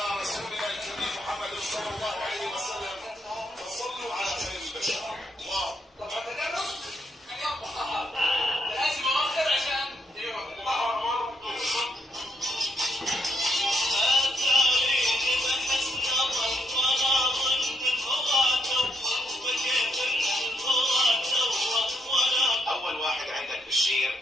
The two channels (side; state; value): both; normal; correlation 0.76